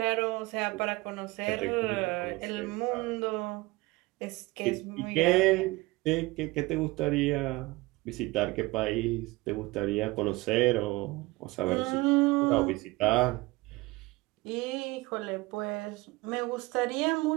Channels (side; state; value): left; quieter; 21.5 dB